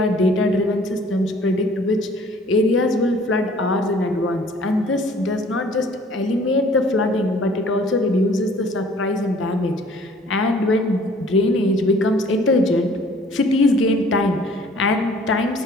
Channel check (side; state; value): both; normal; correlation 0.54